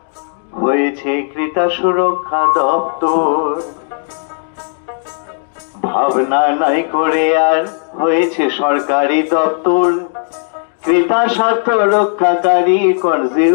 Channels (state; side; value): silent; right; 59 dB below the other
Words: হয়েছে ক্রেতা সুরক্ষা দপ্তর, ভাবনা নাই করে আর হয়েছে সরকারি দপ্তর। ক্রেতা স্বার্থ রক্ষাকারী